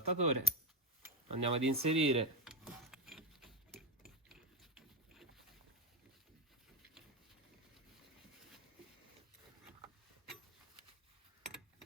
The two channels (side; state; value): both; normal; correlation 0.13